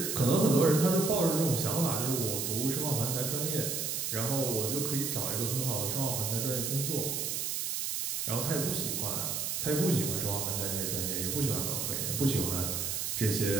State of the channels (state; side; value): noise; right; hiss, 1 dB below the sound